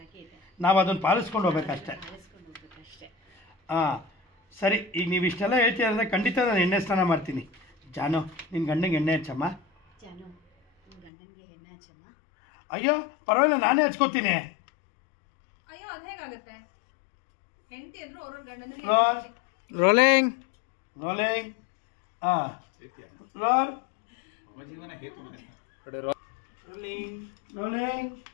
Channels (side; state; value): right; drops out; at 11.1 s